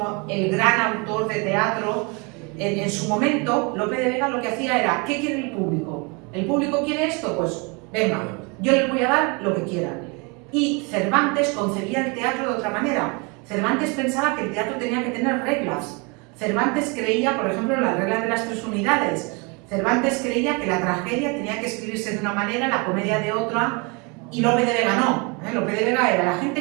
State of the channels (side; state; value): left; quieter; 30.7 dB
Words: el gran autor de teatro, en su momento Lope de Vega lo que hacía era, ¿qué quiere el público? ¿El público quiere esto? Pues venga, yo les voy a dar lo que quieran. Y Cervantes concebía el teatro de otra manera. Cervantes pensaba que el teatro tenía que tener reglas. Cervantes creía, por ejemplo, en la regla de las 3 unidades. Cervantes creía que la tragedia tenía que escribirse de una manera, la comedia de otra, y Lope de Vega no. Lope de Vega era, ¿la